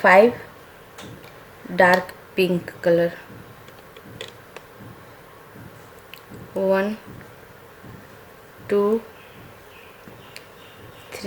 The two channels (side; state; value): both; identical; correlation 1.00